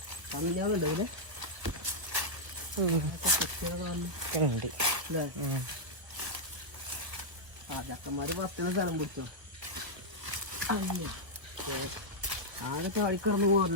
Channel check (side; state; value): left; late; 1.3 ms